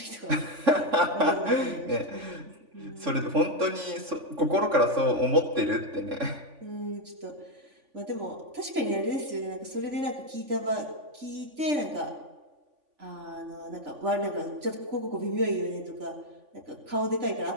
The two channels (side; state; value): left; late; 3.5 ms